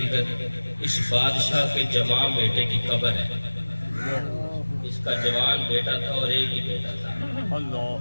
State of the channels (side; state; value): both; inverted; correlation -1.00